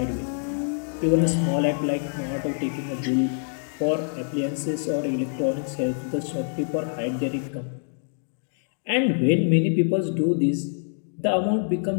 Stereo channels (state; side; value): silent; right; 61 dB below the other